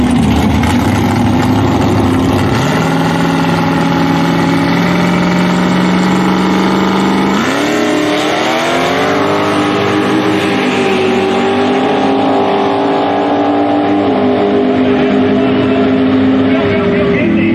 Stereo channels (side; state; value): both; identical; correlation 1.00